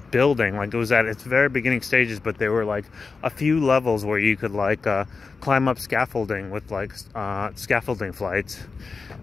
building. Like, it was at its very beginning stages, but there were like a few levels where you could like climb up scaffolding with like scaffolding flights.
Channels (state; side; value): quieter; right; 4.6 dB